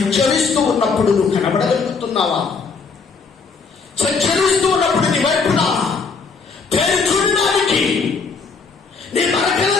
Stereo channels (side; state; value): right; quieter; 4.9 dB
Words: ఉన్నప్పుడు నువ్వు కనబడగలుగుతున్నావా? సంచరిస్తూ ఉన్నప్పుడు నీ వైపున పేరు చూడడానికి నీ